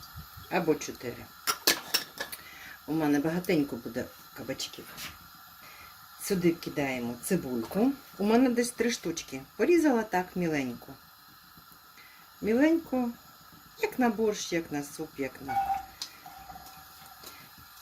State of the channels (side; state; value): both; identical; correlation 1.00